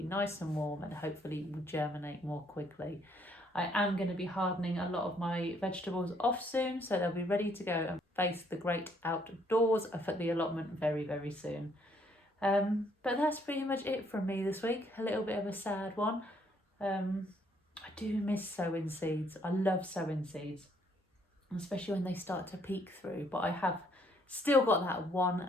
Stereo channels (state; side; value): normal; both; correlation 0.67